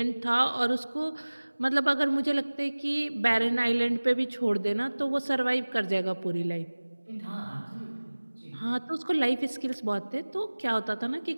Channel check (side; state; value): both; inverted; correlation -1.00